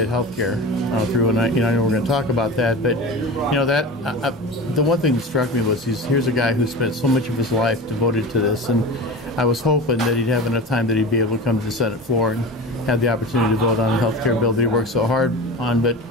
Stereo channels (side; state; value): both; normal; correlation 0.30